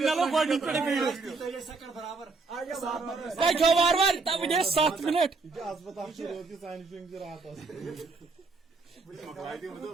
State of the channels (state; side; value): quieter; left; 4.0 dB